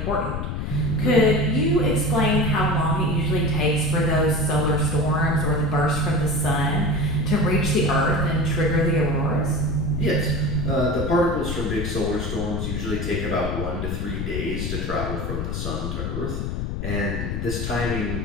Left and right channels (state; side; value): noise; left; rumble, 3 dB below the sound